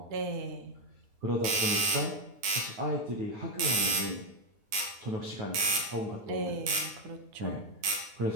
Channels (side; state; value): left; late; 9.7 ms